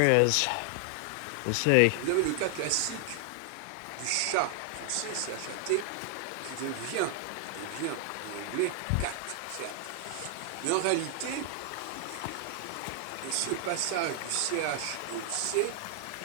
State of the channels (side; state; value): both; different; correlation 0.00